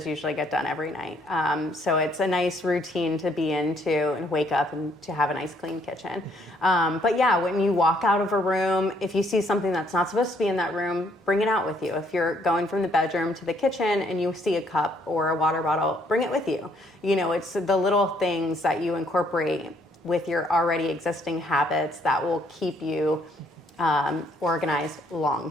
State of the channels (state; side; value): normal; both; correlation 0.67